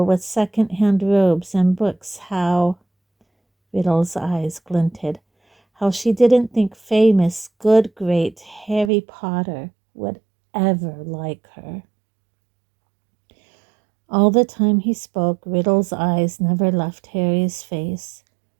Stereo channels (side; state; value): left; drops out; at 8.9 s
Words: with second-hand robes and books, how... Riddle's eyes glinted. How she didn't think famous, good, great Harry Potter would ever like her. All the time he spoke, Riddle's eyes never left Harry's face.